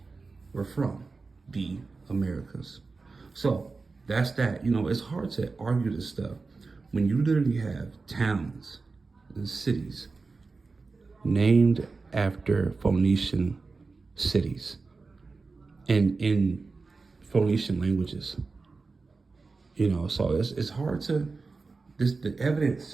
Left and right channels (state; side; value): quieter; left; 4.1 dB